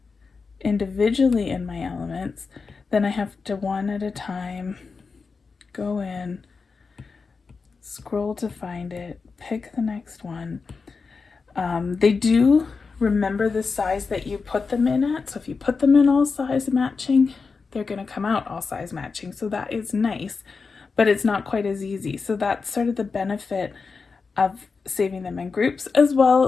individually in my elements, then I have to one at a time go in, scroll to find it, pick the next one. They do remember the size that you put them in at, so if you put them in all size matching, they're going to come out all size matching, so that is nice, but it's not quite as easy. So that's sort of the benefit of saving them in groups. As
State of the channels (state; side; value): quieter; right; 4.7 dB